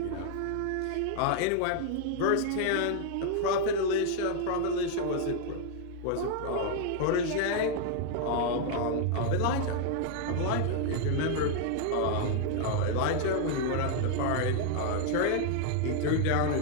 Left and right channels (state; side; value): different; both; correlation 0.00